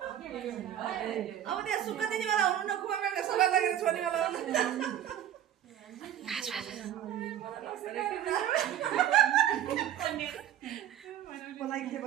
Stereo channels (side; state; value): left; quieter; 11.0 dB